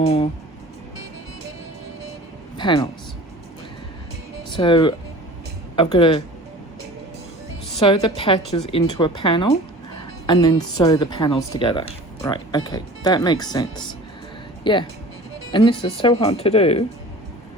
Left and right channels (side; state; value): both; normal; correlation 0.41